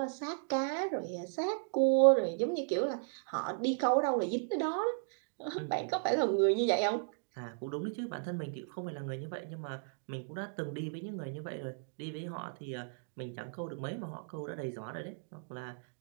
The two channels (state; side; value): silent; left; digital silence